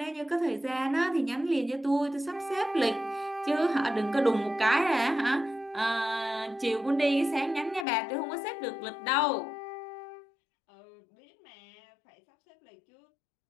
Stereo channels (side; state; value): right; drops out; at 7.9 s